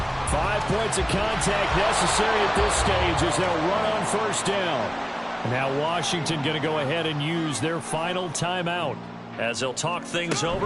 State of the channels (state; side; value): identical; both; correlation 1.00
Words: 5 points of contact necessary at this stage as they'll run on 1st down. Now Washington going to go ahead and use their final timeout as they'll talk things